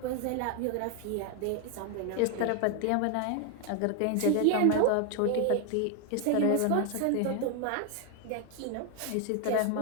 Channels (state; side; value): different; both; correlation 0.00